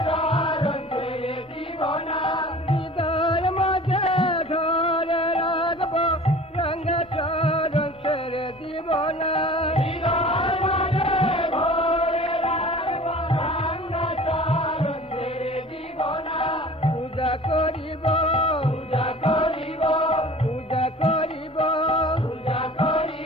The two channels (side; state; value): both; normal; correlation 0.43